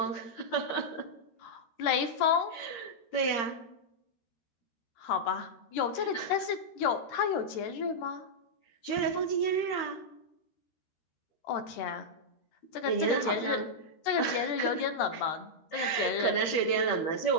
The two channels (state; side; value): late; right; 13 ms